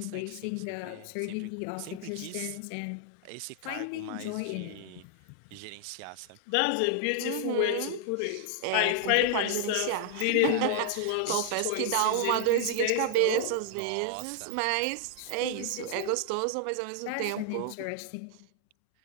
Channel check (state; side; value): different; both; correlation 0.00